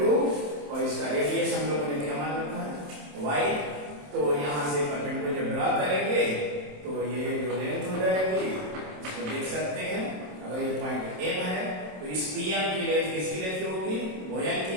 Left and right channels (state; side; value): late; left; 27 ms